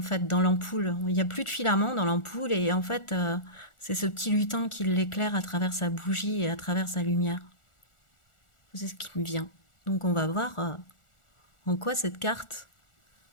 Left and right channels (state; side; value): late; right; 1.4 ms